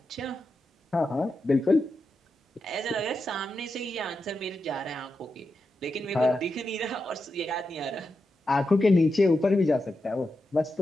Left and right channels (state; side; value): normal; both; correlation 0.88